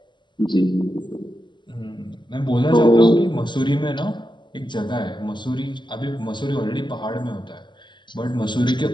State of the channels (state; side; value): late; right; 0.22 ms